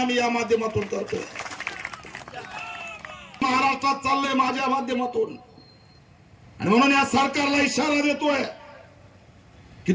या माध्यमातून करतोय. महाराष्ट्रात चाललंय माझ्या माध्यमातून, आणि म्हणून या सरकारला इशारा देतोय की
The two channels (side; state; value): both; identical; correlation 1.00